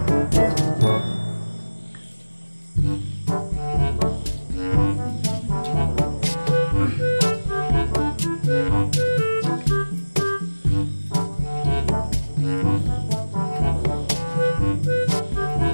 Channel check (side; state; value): both; inverted; correlation -1.00